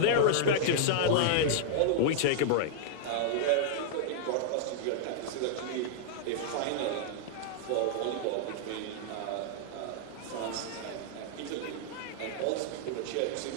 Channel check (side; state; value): both; different; correlation -0.01